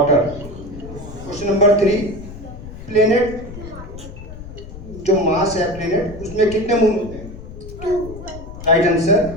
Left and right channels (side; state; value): left; noise; rumble, 13 dB below the sound